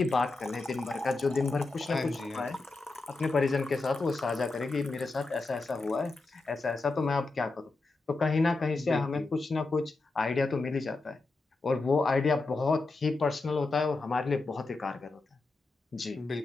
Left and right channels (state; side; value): quieter; right; 3.5 dB